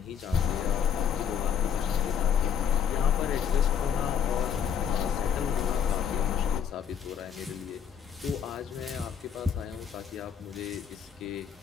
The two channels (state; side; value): quieter; right; 8.0 dB